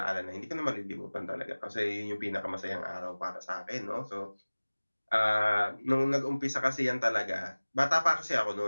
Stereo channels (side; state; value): both; inverted; correlation -1.00